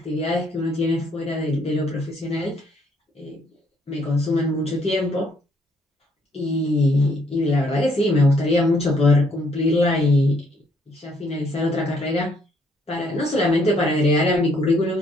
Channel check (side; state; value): both; normal; correlation 0.68